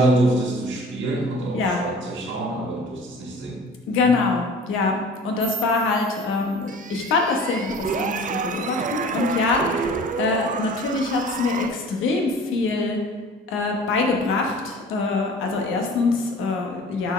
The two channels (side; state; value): both; normal; correlation 0.44